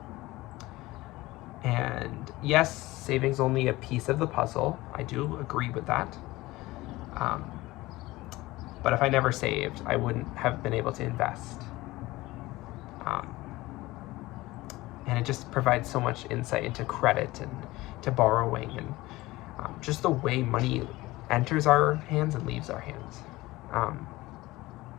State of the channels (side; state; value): right; quieter; 19.2 dB